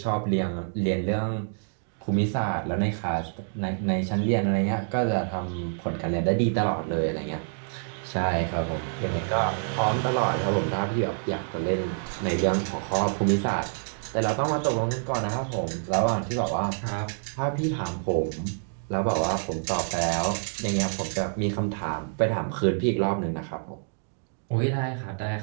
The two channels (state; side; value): silent; left; digital silence